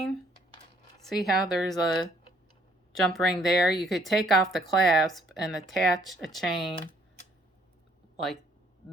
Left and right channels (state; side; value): normal; both; correlation 0.64